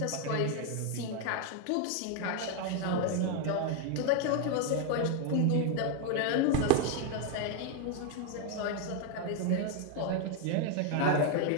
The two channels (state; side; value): different; both; correlation 0.01